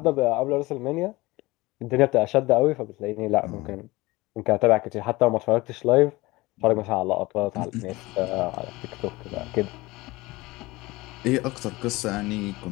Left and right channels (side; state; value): right; quieter; 21.0 dB